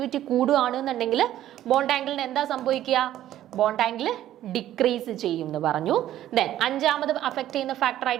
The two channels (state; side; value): quieter; left; 12.7 dB